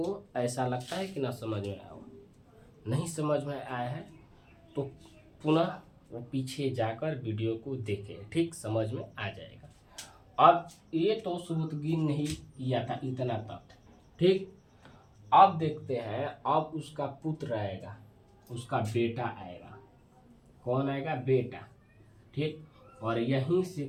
ऐसा लगता है कि ना समझ में आया हो? नहीं समझ में आया है तो पुनः वो पीछे जाकर वीडियो को देखें, ठीक, समझ में आ जाएगा। अब ये तो सुपुतुगीन ने ही किया था, इतना तक, ठीक। अब देखते हैं, अब उसका पुत्र आएगा, उसका बेटा आएगा। कौन आएगा? बेटा, ठीक। और यहीं से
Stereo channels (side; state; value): both; identical; correlation 1.00